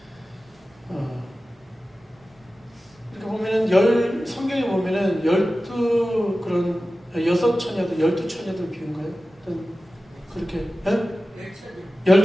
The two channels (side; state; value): both; normal; correlation 0.95